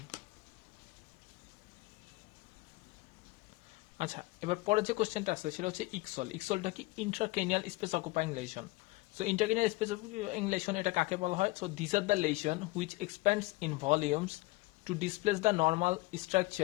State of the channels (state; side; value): quieter; right; 22.1 dB